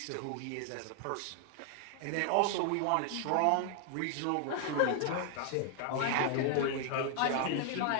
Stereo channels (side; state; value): both; different; correlation 0.00